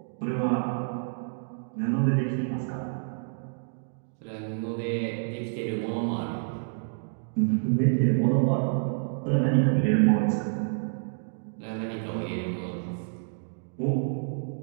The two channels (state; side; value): silent; left; digital silence